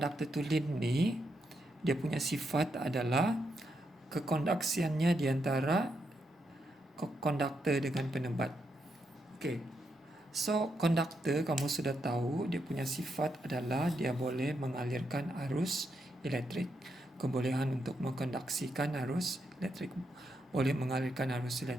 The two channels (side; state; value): both; normal; correlation 0.81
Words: tulin ni dia punya sifat adalah kekondaksiannya di antara konduktor dengan penebat. Okay, so konduktor kamu sudah tahu dia punya sifat adalah dia boleh mengalirkan arus elektrik. Kebolehan untuk mengkondaksikan arus elektrik, boleh mengalirkan arus